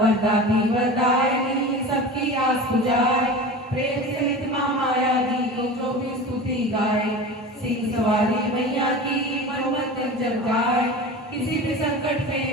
वरदायिनी सबकी आस बुझाए, प्रेम सहित माँ माया दी को जो भी स्तुति गाए। सिंह सवारी मैया की मन मंदिर जब गाए, किसी भी संकट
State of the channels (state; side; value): normal; both; correlation 0.32